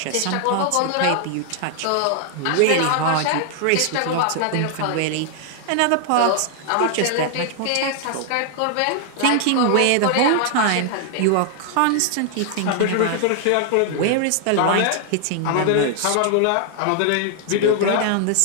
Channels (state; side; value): different; both; correlation 0.00